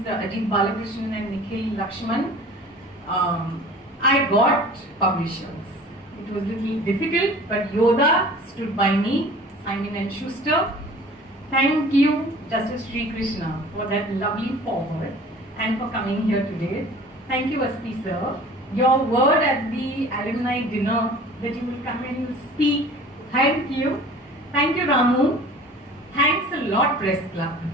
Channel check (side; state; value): both; normal; correlation 0.45